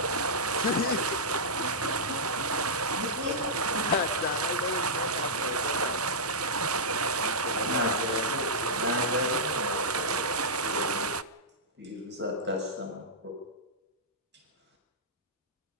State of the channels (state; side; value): normal; both; correlation -0.11